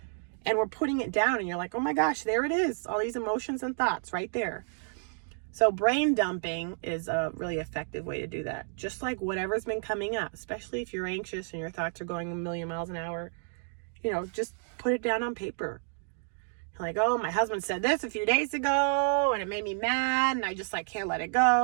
And we're putting it down and you're like, oh my gosh, there it is. All these emotions and thoughts right there. So brain dumping is a really effective way to do that. Just like whatever's been coming up, especially if you're anxious and your thoughts are going a million miles an hour, you know, just put it down on paper. Like, oh, my husband said this a few days ago and it made me mad and I just like can't let it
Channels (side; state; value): left; silent; 58 dB below the other